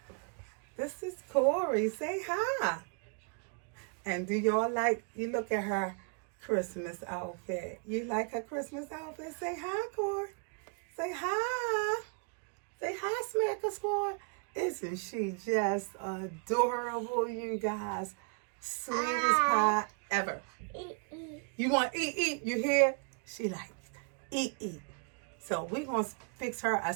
This is Corey. Say hi. And do y'all like, you look at her Christmas outfit. You like her Christmas outfit? Say hi, Corey. Say hi. Say hi, Smacker Squad. Isn't she just adorable, you guys? Sweetest pie ever. You want eat? You hear? She likes eat. So we're going to fix her a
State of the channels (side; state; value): left; quieter; 38.7 dB